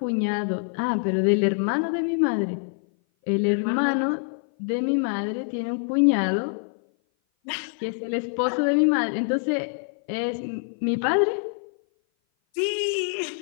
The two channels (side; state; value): right; silent; 57 dB below the other